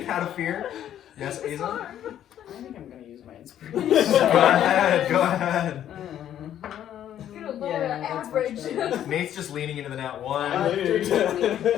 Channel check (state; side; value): quieter; right; 10.9 dB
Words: out of fear. Yes, It's Aza? hard. I think I'm gonna use my Go inspiration. ahead, go ahead. You're lower average. Nate's just leaning into the nat 1.